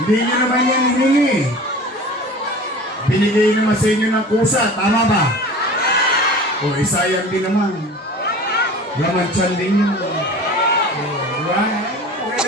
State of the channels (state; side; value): normal; both; correlation 0.39